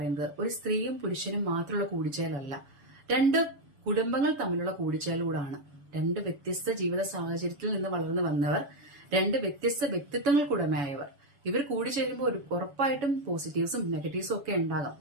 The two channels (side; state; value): left; late; 7.0 ms